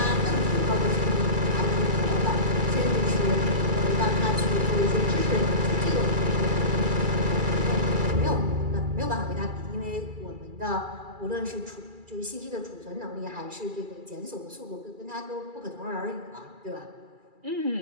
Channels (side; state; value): left; late; 2.3 ms